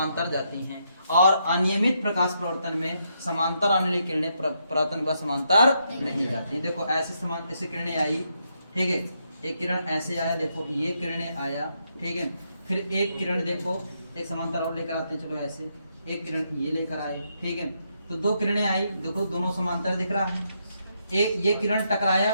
जाती हैं। और अनियमित प्रकाश परावर्तन में समांतर आने वाली किरणें परावर्तन के बाद समांतर नहीं जाती। देखो ऐसे किरणें आई, ठीक है। एक किरण ऐसे आया, देखो ये किरणें आया, ठीक है। फिर एक किरण देखो, एक समांतर और लेकर आते हैं, चलो ऐसे एक किरण ये लेकर आए, ठीक है। तो दो किरणें आई, देखो दोनों समांतर दिख रहा है। एक ये किरण टकराया,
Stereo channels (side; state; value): both; inverted; correlation -0.78